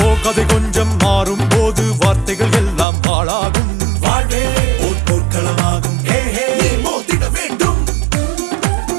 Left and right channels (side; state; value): left; drops out; at 2.9 s